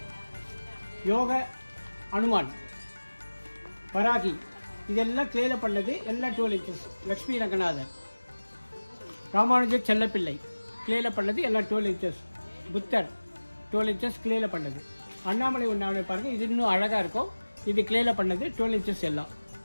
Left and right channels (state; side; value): inverted; both; correlation -1.00